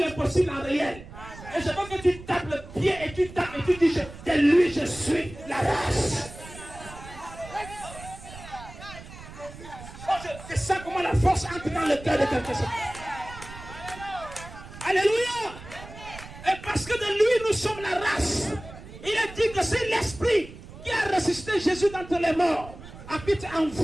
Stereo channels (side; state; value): right; noise; rumble, 15 dB below the sound